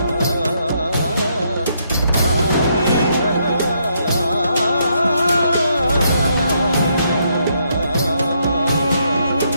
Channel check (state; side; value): inverted; both; correlation -0.75